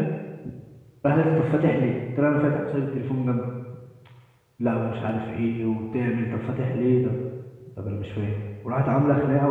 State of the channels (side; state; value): both; identical; correlation 1.00